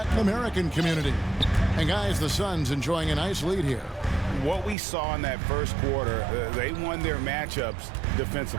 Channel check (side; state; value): left; drops out; at 4.8 s